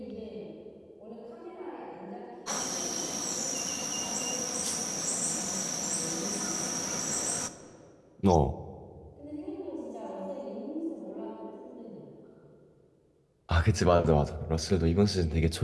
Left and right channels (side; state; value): both; identical; correlation 1.00